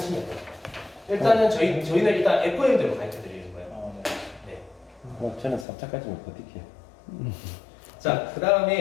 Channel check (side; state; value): right; drops out; at 5.7 s